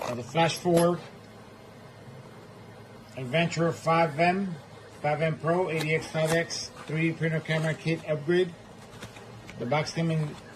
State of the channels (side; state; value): both; identical; correlation 1.00